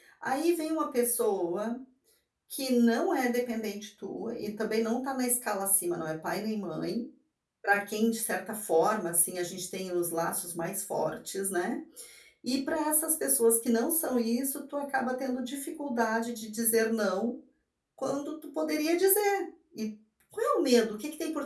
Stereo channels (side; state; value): both; identical; correlation 1.00